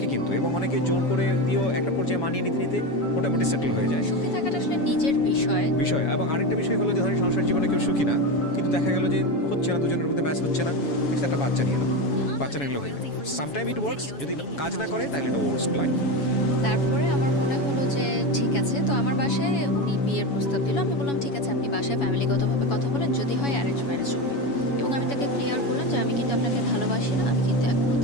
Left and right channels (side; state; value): right; late; 7.1 ms